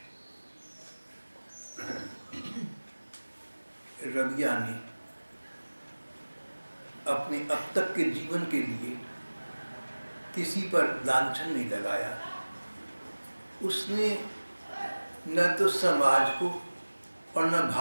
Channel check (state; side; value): inverted; both; correlation -1.00